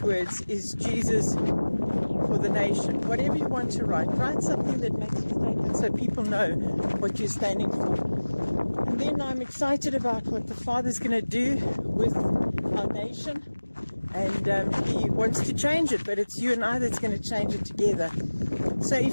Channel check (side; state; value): both; inverted; correlation -1.00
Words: words is Jesus for the nation. Whatever you want to write something that makes a statement so people know what you're standing for. And then I'm excited about what the Father's going to do with our nation. And He wants to change it, but it's you and I that's going to change it together. So